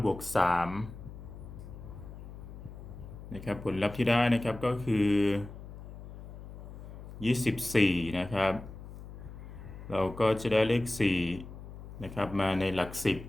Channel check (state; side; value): noise; left; hum, 13 dB below the sound